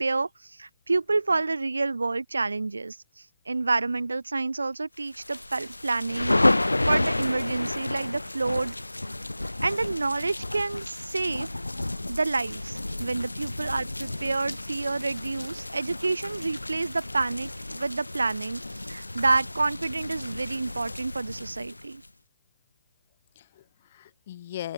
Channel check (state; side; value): inverted; both; correlation -0.97